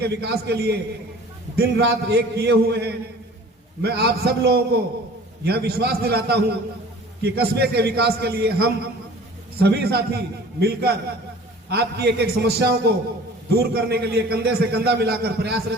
विकास के लिए दिन रात एक किए हुए हैं, मैं आप सब लोगों को यह विश्वास दिलाता हूं कि कस्बे के विकास के लिए हम सभी साथी मिलकर आपकी एक एक समस्याओं को दूर करने के लिए कंधे से कंधा मिलाकर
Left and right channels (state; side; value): normal; both; correlation 0.46